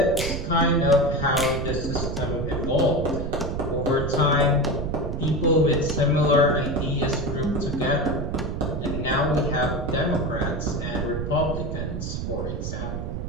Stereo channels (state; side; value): noise; right; rumble, 4 dB below the sound